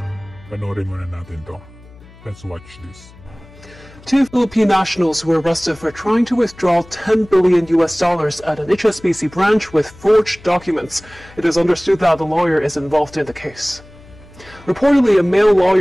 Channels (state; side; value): noise; left; hum, 23 dB below the sound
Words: Panoorin muna natin to. Let's watch this. Two Philippine nationals were arrested for trying to withdraw 10 billion US dollars at an HSBC branch with forged documents. It is understood that the lawyer is involved in the case. Reportedly, a male